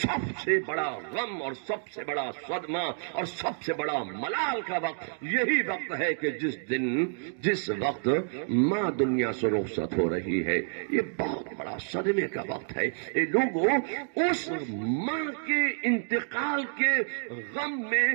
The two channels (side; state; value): left; silent; digital silence